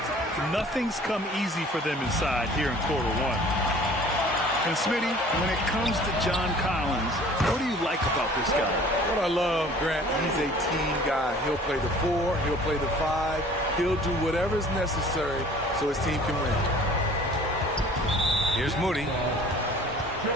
Nothing's come easy for them inside here in quarter one. And Smitty, when it comes to John Collins, what do you like about this guy? What I love, Grant, he's a team guy. He'll play the 4, he'll play the 5. He'll do whatever's necessary so his team can win. Here's Moody.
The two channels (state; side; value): normal; both; correlation 0.49